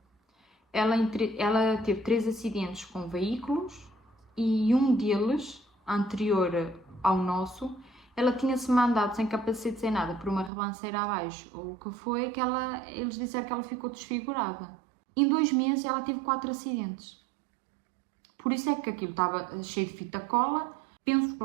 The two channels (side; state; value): left; drops out; at 10.5 s